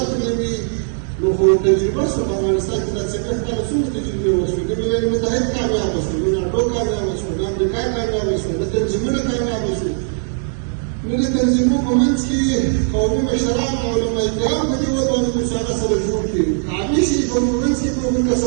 نه وي، نو خو تجربه شوه په افغانستان کې دا څنګه کله څومره تجربې وشوې، د ملل متحد کامیابه شو، د ناټو کامیابه شو، د امریکا کامیابه شو، د تنظیمونه کامیابه شو. نو د تنظیمونو په منځ کې قومي مشران او علماء کرام په دې ودانو کې هغه سره جوړ کړي، عامي شي په منځ کې په موږ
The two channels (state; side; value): silent; left; digital silence